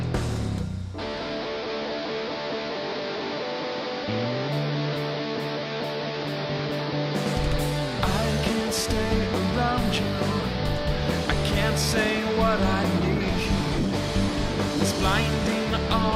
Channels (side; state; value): both; identical; correlation 1.00